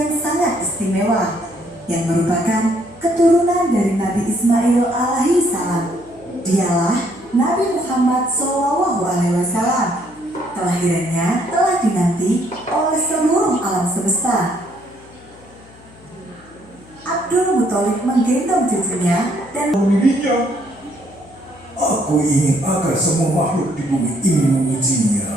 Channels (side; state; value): left; noise; hum, 24 dB below the sound